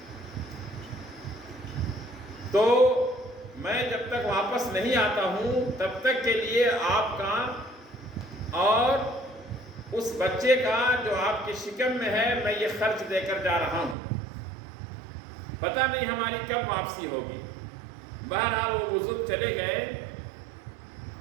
تو میں جب تک واپس نہیں آتا ہوں تب تک کے لیے آپ کا اور اس بچے کا جو آپ کی شکم میں ہے میں یہ خرچ دے کر جا رہا ہوں، پتہ نہیں ہماری کب واپسی ہوگی۔ بہرحال وہ بزرگ چلے گئے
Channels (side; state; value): left; drops out; at 14.0 s